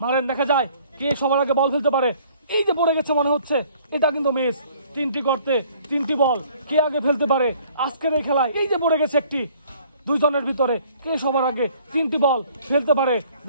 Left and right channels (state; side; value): inverted; both; correlation -0.57